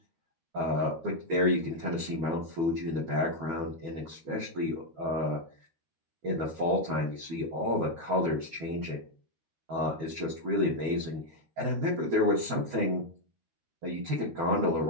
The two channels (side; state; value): left; late; 13 ms